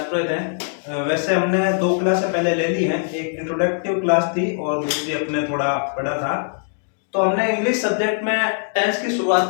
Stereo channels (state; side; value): silent; right; digital silence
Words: है। वैसे हमने दो क्लासें पहले ले ली हैं। एक इंट्रोडक्टिव क्लास थी और दूसरी अपने थोड़ा पढ़ा था। तो हमने इंग्लिश सब्जेक्ट में टेंस की शुरुआत